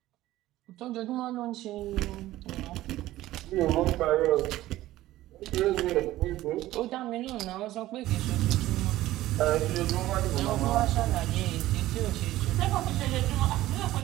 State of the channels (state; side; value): quieter; left; 15.6 dB